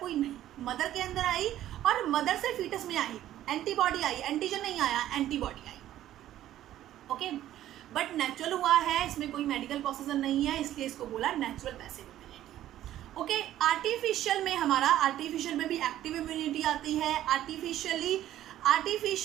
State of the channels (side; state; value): left; quieter; 12.8 dB